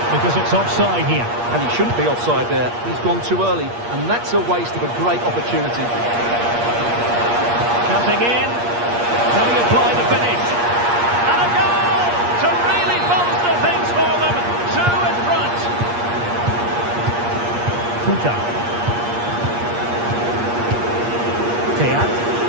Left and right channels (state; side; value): late; left; 8.5 ms